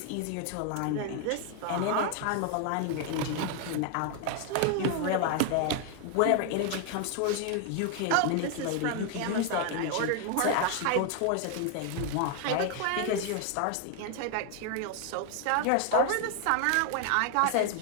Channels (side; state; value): both; different; correlation 0.00